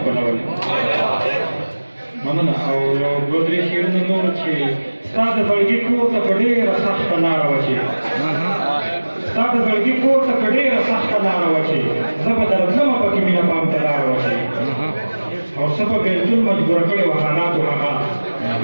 مننه او یو دوه درې شعرونه نور چې ستا د زړګي کور ته په ډېره سخته لاره وه چې ستا د زړګي کور ته په ډېره سخته لاره وه چې زه به درځمه پکې مینه پام ته لاره وه چې او څه په بېلتون مجبوره کړې وه حالاتو هغه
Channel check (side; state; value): both; inverted; correlation -1.00